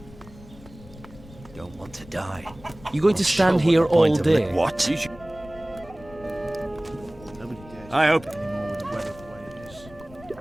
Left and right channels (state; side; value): noise; left; rumble, 20 dB below the sound